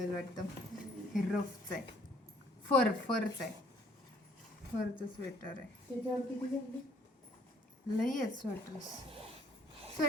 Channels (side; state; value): both; normal; correlation 0.61